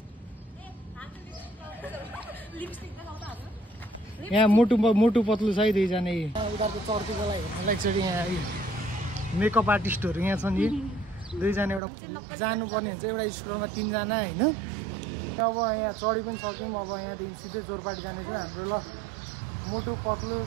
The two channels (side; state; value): left; drops out; at 11.8 s